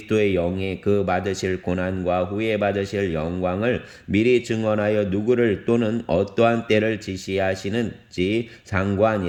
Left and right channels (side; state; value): both; identical; correlation 1.00